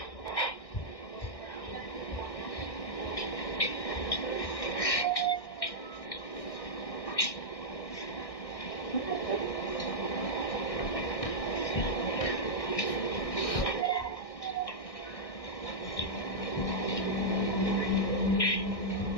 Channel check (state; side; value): late; right; 1.6 ms